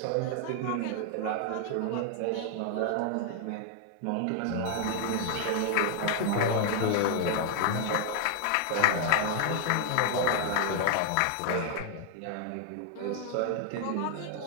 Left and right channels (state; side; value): different; both; correlation 0.00